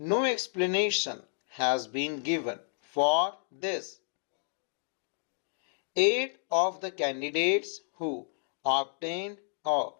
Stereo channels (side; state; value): right; silent; digital silence